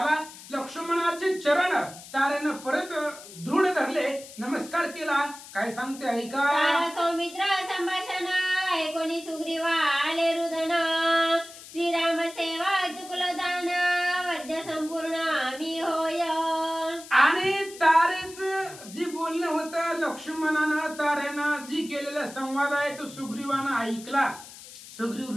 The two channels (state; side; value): noise; left; hiss, 16 dB below the sound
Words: लक्ष्मणाचे चरण तारेनं परत दृढ धरले, नमस्कार केला. काय सांगते ऐका. तारा सौमित्र संभाषण ऐकोनी सुग्रीवा आले रुदन श्रीराम सेवा चुकलं जाण वद्य संपूर्ण मी होय. आणि तारेच जी बोलणं होतं लक्ष्मणानं तारेनं जी केलेला संवाद आहे तो सुग्रीवानं ऐकला.